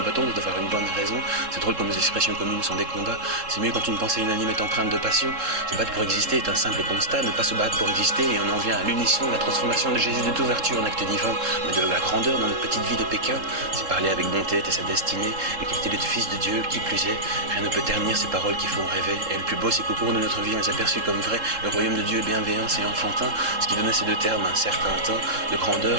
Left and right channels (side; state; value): left; late; 3.7 ms